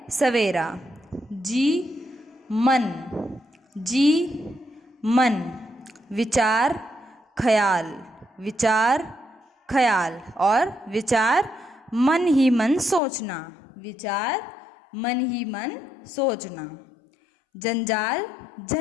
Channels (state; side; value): drops out; right; at 13.0 s